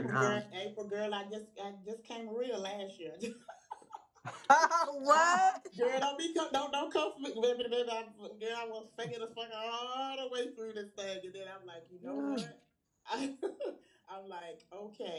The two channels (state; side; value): identical; both; correlation 1.00